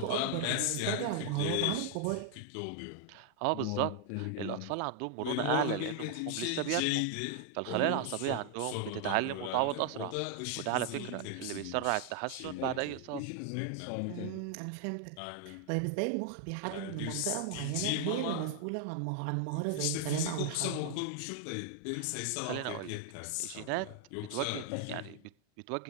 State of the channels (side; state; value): both; different; correlation 0.00